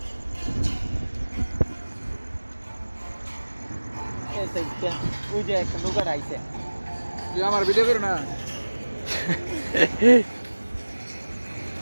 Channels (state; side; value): inverted; both; correlation -1.00